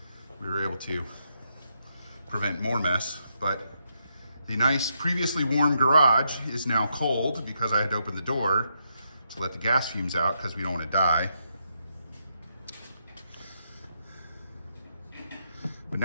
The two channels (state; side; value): inverted; both; correlation -0.80